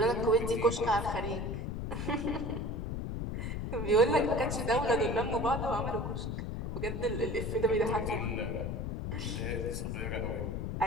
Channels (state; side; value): noise; left; rumble, 3 dB below the sound